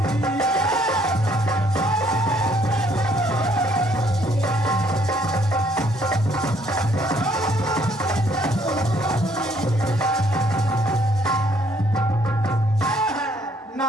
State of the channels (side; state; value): both; normal; correlation 0.65